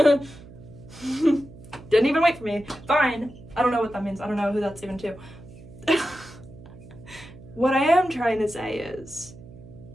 even wait for me. Fine. I don't know what that means. I don't know who that's even to. What I am trying to say is,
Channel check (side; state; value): right; noise; hum, 18 dB below the sound